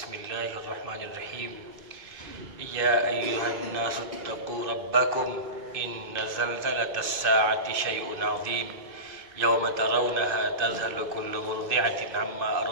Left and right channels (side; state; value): left; late; 2.5 ms